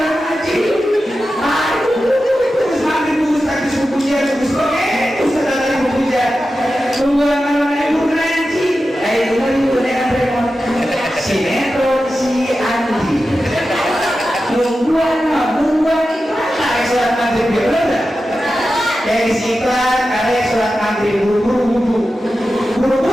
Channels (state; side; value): normal; both; correlation 0.92